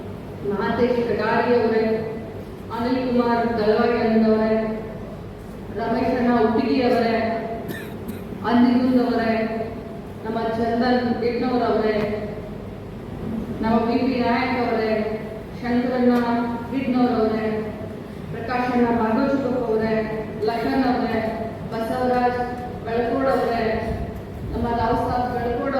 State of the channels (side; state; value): both; identical; correlation 1.00